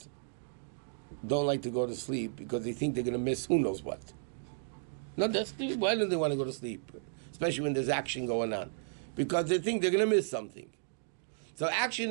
don't like to go to sleep because they think they're going to miss who knows what. No, why do they want to go to sleep? Especially when there's action going on. Because they think they're going to miss something. So action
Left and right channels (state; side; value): silent; left; digital silence